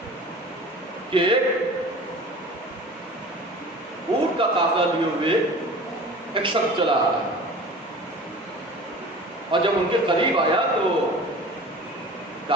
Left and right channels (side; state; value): both; normal; correlation 0.40